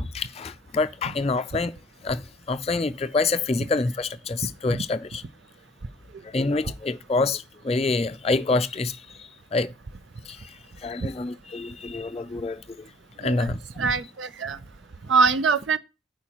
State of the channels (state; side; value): normal; both; correlation 0.52